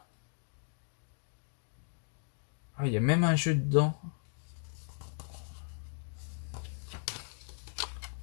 Ah, il y a même un jeu dedans.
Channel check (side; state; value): right; silent; digital silence